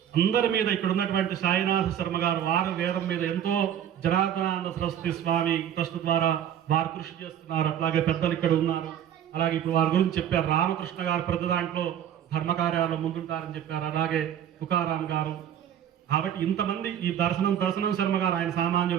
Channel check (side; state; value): left; quieter; 10.0 dB